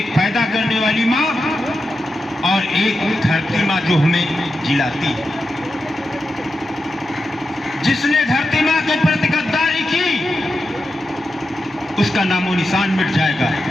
पैदा करने वाली माँ और एक धरती माँ जो हमें जिलाती है। जिसने धरती माँ के प्रति गद्दारी की, उसका नामो निशान मिट जाएगा।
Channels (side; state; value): both; normal; correlation 0.89